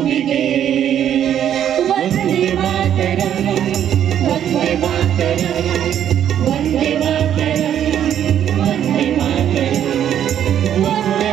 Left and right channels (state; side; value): quieter; left; 10.0 dB